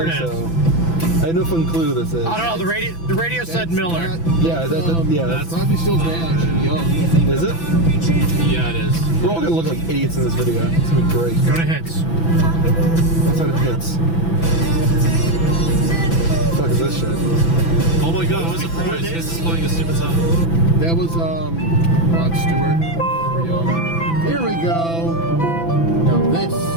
it is. so. I had no fucking clue who this is. I don't know, the radio said Miller. Yeah, that's Crosby, Stills Nash and Young. Is it? Yeah, it is. We're all gonna look like idiots in this video. It's gonna be great. Go to hits. What's out of hits? What the fuck is this shit? Oh my god, what a surprise. Hits is playing a stupid song. That was Rod Stewart. Young. Here we go. Now this,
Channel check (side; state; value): right; late; 6.0 ms